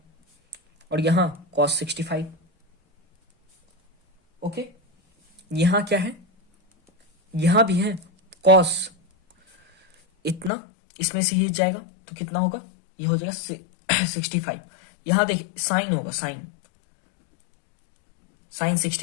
और यहां कॉस 65। ओके, यहां क्या है, यहां भी है कॉस इतना, इसमें से ये जाएगा तो कितना होगा, ये हो जाएगा 65। यहां देखिए साइन होगा, साइन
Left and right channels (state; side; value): drops out; right; at 10.5 s